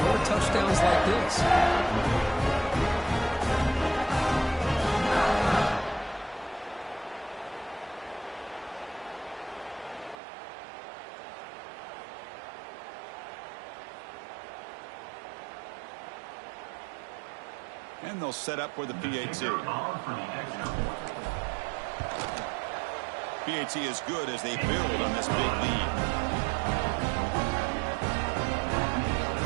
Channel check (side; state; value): left; drops out; at 10.2 s